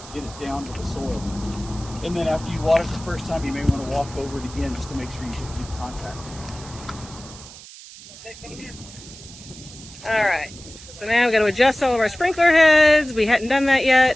it down to the soil. And then after you water it the first time, you may want to walk over it again just to make sure you get good contact. All right. So now we've got to adjust all of our sprinkler heads. We hadn't done that yet.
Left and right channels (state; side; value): noise; right; hiss, 17 dB below the sound